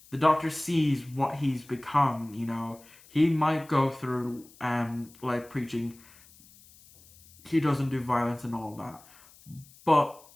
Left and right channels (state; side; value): noise; left; hiss, 25 dB below the sound